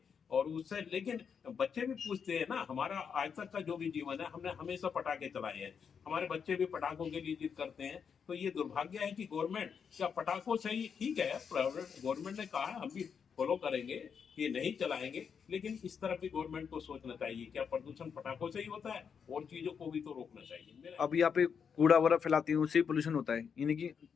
और उससे, लेकिन बच्चे भी पूछते हैं ना। हमारा आज तक का जो भी जीवन है, हमने हमेशा पटाखे चलाए हैं, हमारे बच्चे भी पटाखों के लिए जिद करते हैं। तो ये दुर्भाग्य है कि गवर्नमेंट क्या पटाखों से ही, ठीक है गवर्नमेंट ने कहा है, हम भी फॉलो करेंगे कि नहीं चलाएंगे, लेकिन इस तरफ भी गवर्नमेंट को सोचना चाहिए, क्या प्रदूषण पटाखों से ही होता है? और चीजों को भी तो रोकना चाहिए। अब यहाँ पे कूड़ा वगैरह फैलाती है, उससे पोल्यूशन होता है, यानी कि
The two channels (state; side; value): quieter; right; 6.7 dB